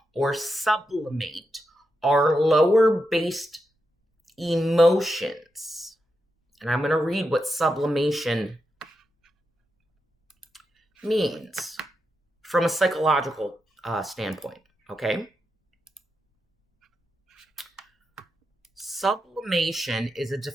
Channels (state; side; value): normal; both; correlation 0.86